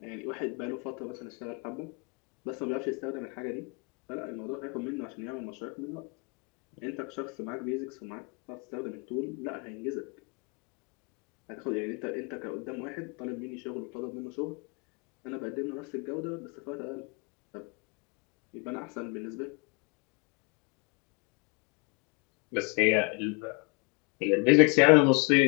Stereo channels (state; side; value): quieter; right; 31.0 dB